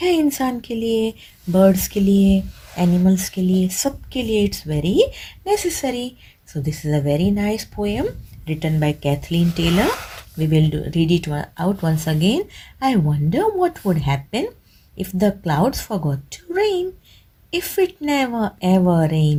है इंसान के लिए, बर्ड्स के लिए, एनिमल्स के लिए, सब के लिए. It's very necessary. So this is a very nice poem written by Kathleen Taylor. We will read it out once again. I wonder what would happen if the clouds forgot to rain. If it never ever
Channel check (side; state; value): both; identical; correlation 1.00